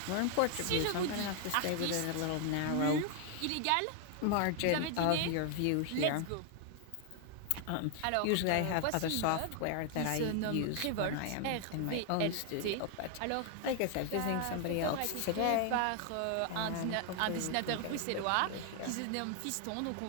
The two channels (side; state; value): both; different; correlation 0.00